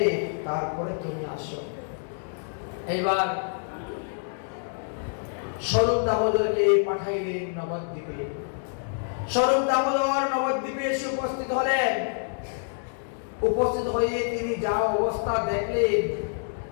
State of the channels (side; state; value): right; silent; digital silence